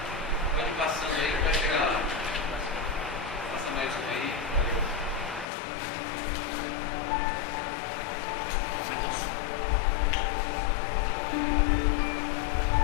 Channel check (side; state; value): right; drops out; at 5.5 s